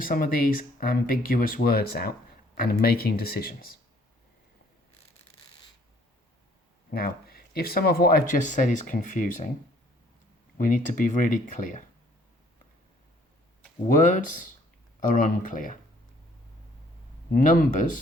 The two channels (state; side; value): normal; both; correlation 0.60